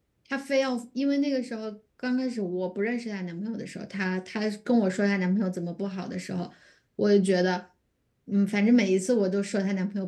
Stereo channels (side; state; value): both; identical; correlation 1.00